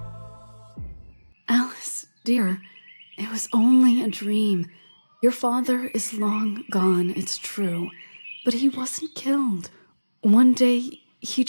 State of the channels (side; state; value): both; inverted; correlation -1.00